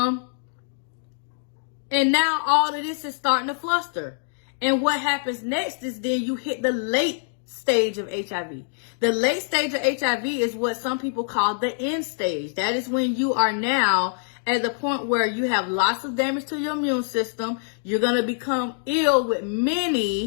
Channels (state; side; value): silent; right; digital silence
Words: now all of this is starting to fluster. And what happens next is then you hit the late stage of HIV. The late stage of HIV is what some people call the end stage. That is when you are now at the point where you have lots of damage to your immune system. You're going to become ill with